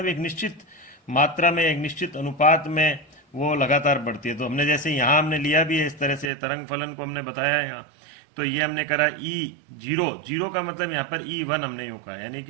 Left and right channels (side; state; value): left; drops out; at 6.3 s